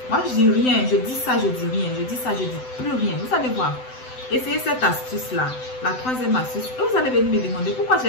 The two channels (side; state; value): right; late; 7.9 ms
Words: Moi, je dis rien, je dis ça, je dis rien, je dis ça, je dis plus rien. Vous allez voir. Essayez cette astuce-là, la troisième astuce. Et vous allez venir me demander pourquoi